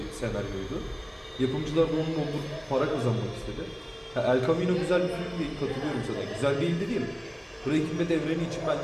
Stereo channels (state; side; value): identical; both; correlation 1.00